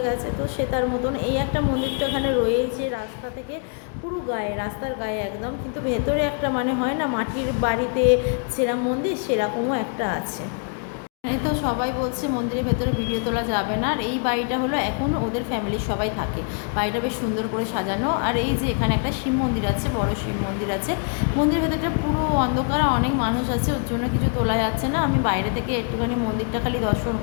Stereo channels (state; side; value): quieter; right; 39.6 dB